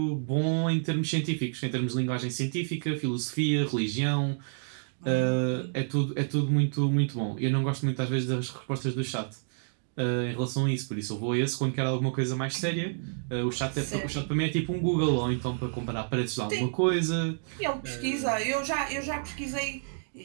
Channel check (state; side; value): silent; left; digital silence